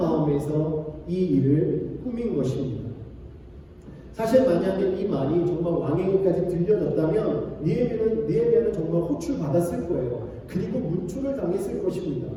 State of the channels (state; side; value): identical; both; correlation 1.00